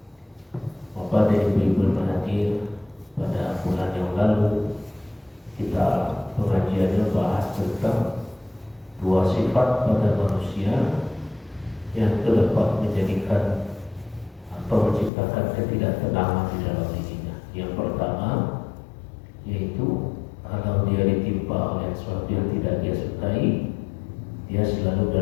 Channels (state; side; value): drops out; right; at 15.1 s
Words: Pada ibu-ibu hadir pada bulan yang lalu kita pengajiannya bahas tentang dua sifat pada manusia yang dapat menjadikan atau menciptakan ketidaktenangan di dalam dirinya. Yang pertama yaitu kalau dia ditimpa oleh sesuatu yang tidak dia sukai, dia selalu